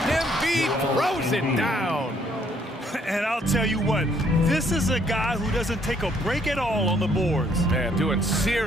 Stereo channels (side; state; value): both; normal; correlation 0.66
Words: Embiid throws it down. And I'll tell you what, this is a guy who doesn't take a break at all on the boards. Man, doing